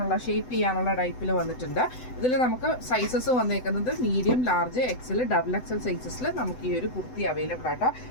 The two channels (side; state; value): right; late; 7.9 ms